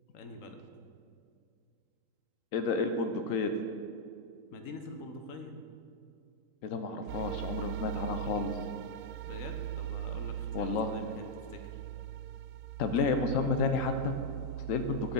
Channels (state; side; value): late; right; 3.8 ms